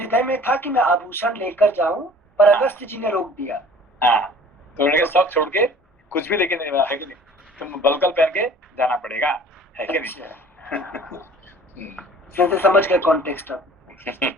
में था कि मैं आभूषण लेकर जाऊं, पर अगस्त्य जी ने रोक दिया। हाँ, तो उन्होंने सब छोड़ के कुछ भी लेके नहीं, है कि नहीं, तुम बलकल पहन के जाना पड़ेगा, है कि नहीं। समझ गए कॉन्टेक्स्ट अब।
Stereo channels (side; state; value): both; normal; correlation 0.48